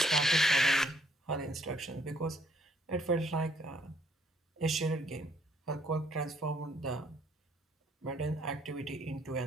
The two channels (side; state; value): both; normal; correlation 0.66